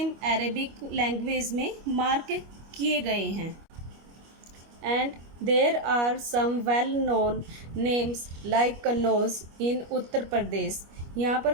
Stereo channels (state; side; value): late; left; 25 ms